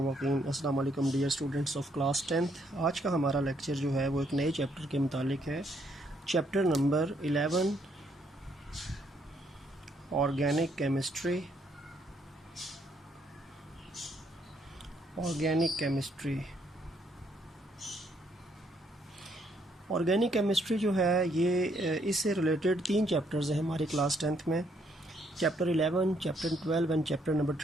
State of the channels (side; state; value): both; normal; correlation 0.71